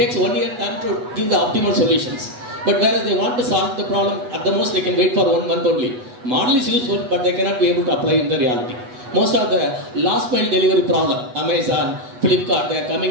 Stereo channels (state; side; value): late; left; 8.1 ms